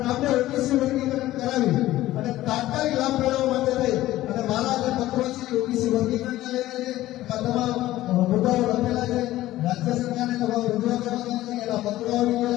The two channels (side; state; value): right; quieter; 15.4 dB